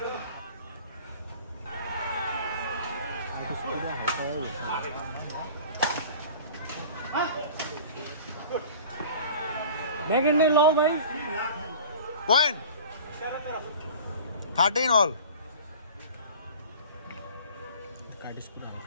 ব্যাগেন্ড লাও ভাই পয়েন্ট 13 all কাটিস পুরা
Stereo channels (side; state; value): both; inverted; correlation -0.42